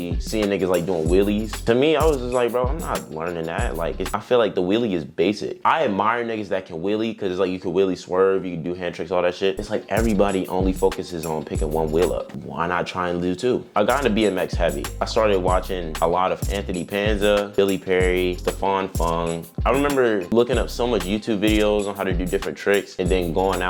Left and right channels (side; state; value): both; identical; correlation 1.00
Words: seeing niggas like doing wheelies. To me, I was just like, bro, I'm not learning that. Like, I feel like the wheelie is basic. I admire niggas that can wheelie, because it's like you can wheelie swerve, you can do hand tricks, all that shit. It's like everybody only focuses on picking one wheel up. Why not try and do two? I got into BMX heavy. I started watching a lot of Anthony Panza, Billy Perry, Stefan Fung. I remember looking up so much YouTube videos on how to do different tricks, and then going